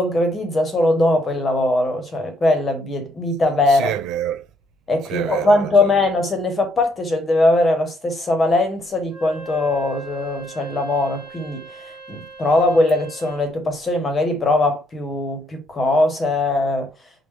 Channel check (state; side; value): normal; both; correlation 0.71